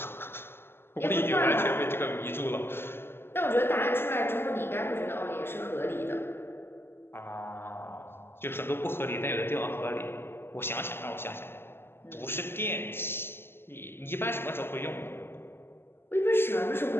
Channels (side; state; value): right; late; 0.11 ms